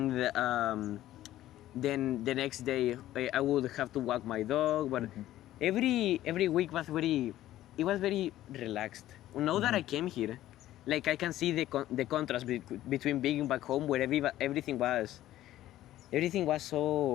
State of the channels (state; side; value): quieter; right; 14.0 dB